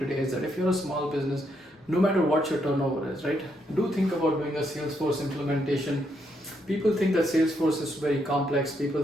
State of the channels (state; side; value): normal; both; correlation 0.77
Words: is that if you're a small business, no matter what your turnover is, right? Do think about doing a Salesforce implementation. People think that Salesforce is very complex.